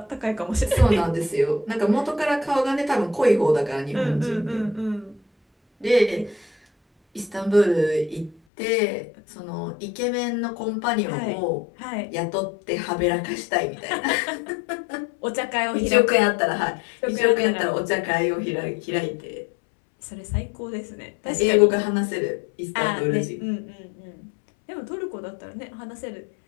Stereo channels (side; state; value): right; drops out; at 8.3 s